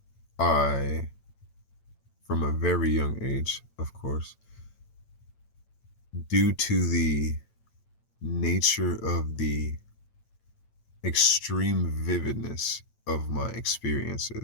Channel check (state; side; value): late; right; 8.9 ms